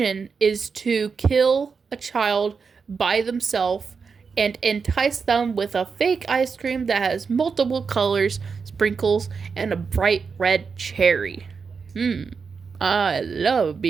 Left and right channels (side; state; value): left; quieter; 5.4 dB